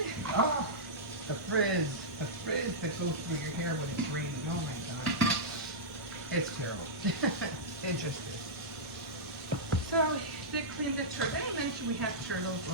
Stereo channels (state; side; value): normal; both; correlation -0.12